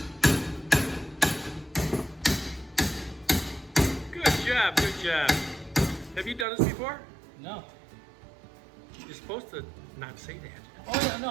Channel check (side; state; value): left; drops out; at 6.5 s